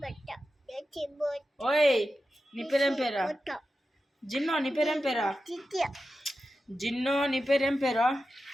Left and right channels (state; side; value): normal; both; correlation 0.91